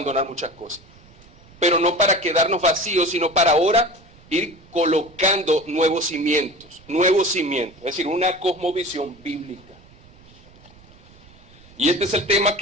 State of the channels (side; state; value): right; noise; rumble, 25 dB below the sound